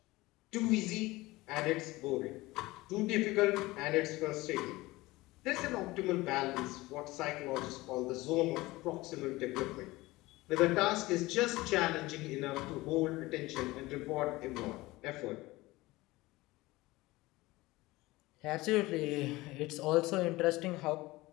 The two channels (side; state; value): right; quieter; 20.0 dB